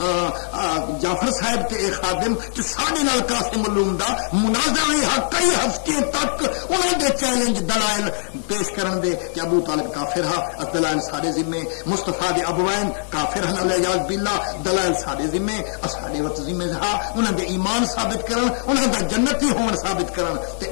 جعفر صاحب تے اے خادم تے سارے نال قاسم علوم دا مناظرہ کئی ہفتے تک انہاں دے چیلنج دلائل پیش کرن دے کہ ابو طالب کافر ہا دلائل سارے ذمے مصطفیٰ دے ابوین کافر ہن الیاذ باللہ دلائل سارے ذمے اساڈے وقت ذمہ ہا انہاں دے ایمان ثابت کرن انہاں دا جنتی ہون ثابت کرن تے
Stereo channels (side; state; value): right; silent; 57 dB below the other